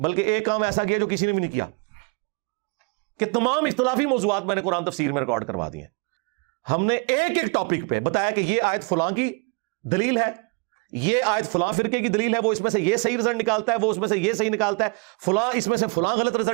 ایک کام ایسا کیا جو کسی نے بھی نہیں کیا، کہ تمام اختلافی موضوعات میں نے قرآن تفسیر میں ریکارڈ کروا دیے ہیں۔ ہم نے ایک ایک ٹاپک پہ بتایا کہ یہ آیت فلاں کی دلیل ہے، یہ آیت فلاں فرقے کی دلیل ہے، وہ اس میں سے یہ صحیح رزلٹ نکالتا ہے، وہ اس میں سے یہ صحیح نکالتا ہے، فلاں اس میں سے فلاں غلط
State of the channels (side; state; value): left; quieter; 33.1 dB